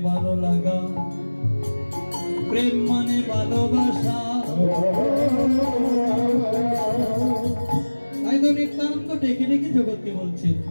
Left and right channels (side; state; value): both; inverted; correlation -1.00